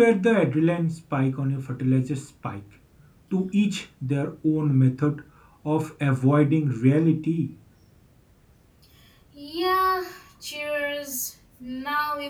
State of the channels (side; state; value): both; identical; correlation 1.00